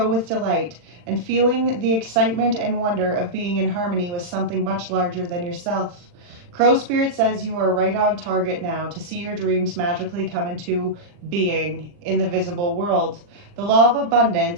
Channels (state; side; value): late; left; 40 ms